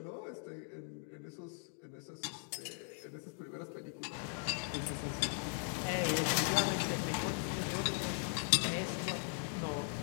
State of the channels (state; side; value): silent; right; 52 dB below the other